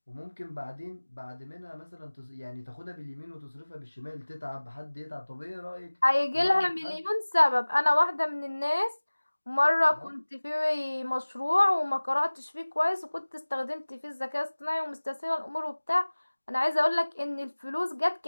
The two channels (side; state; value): both; inverted; correlation -1.00